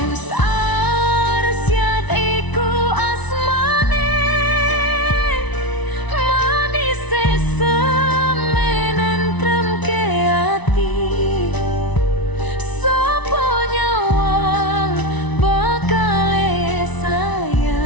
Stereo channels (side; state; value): right; late; 1.0 ms